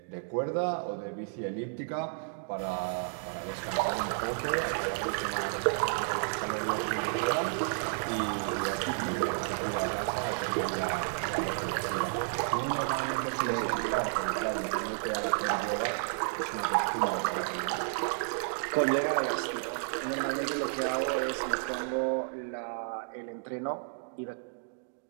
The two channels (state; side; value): silent; left; digital silence